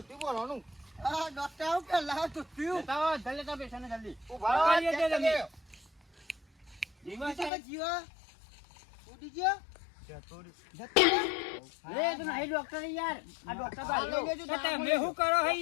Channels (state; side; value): drops out; right; at 7.5 s